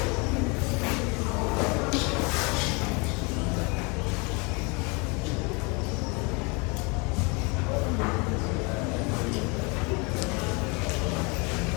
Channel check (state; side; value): quieter; right; 30.1 dB